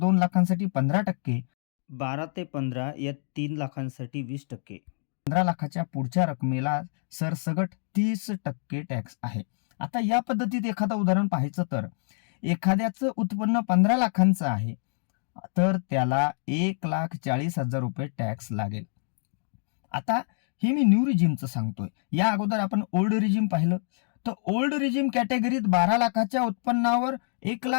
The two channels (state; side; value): silent; right; digital silence